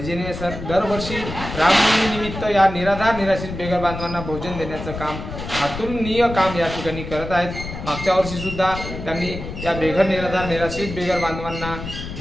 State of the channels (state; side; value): noise; left; rumble, 9 dB below the sound